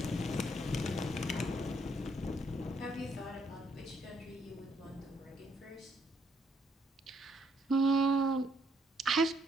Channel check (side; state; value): both; normal; correlation 0.71